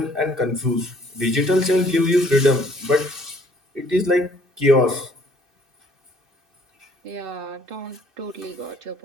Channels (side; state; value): left; late; 2.6 ms